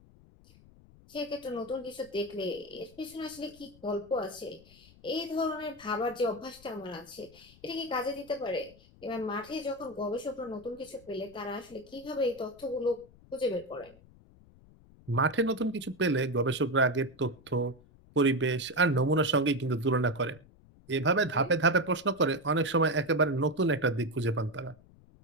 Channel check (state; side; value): noise; left; rumble, 25 dB below the sound